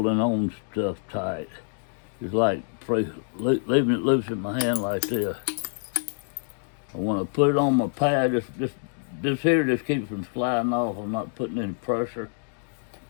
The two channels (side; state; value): right; silent; digital silence